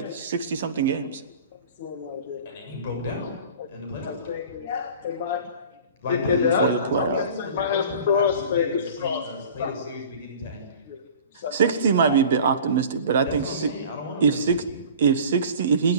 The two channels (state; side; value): inverted; both; correlation -0.42